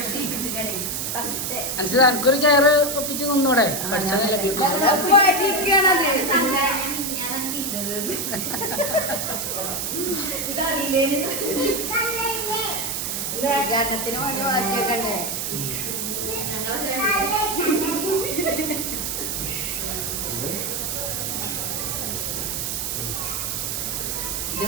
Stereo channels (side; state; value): right; noise; hiss, 2 dB below the sound